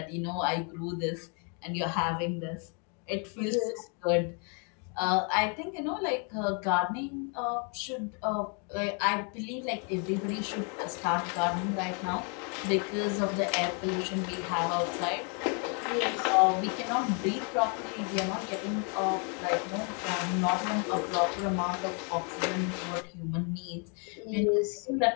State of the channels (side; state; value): right; quieter; 37.3 dB